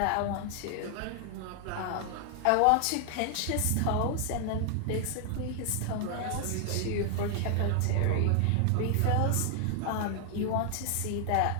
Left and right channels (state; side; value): different; both; correlation 0.00